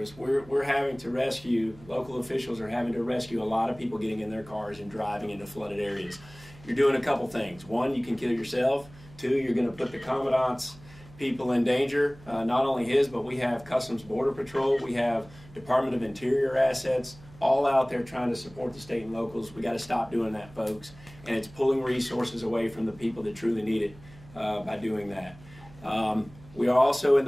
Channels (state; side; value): noise; right; hum, 22 dB below the sound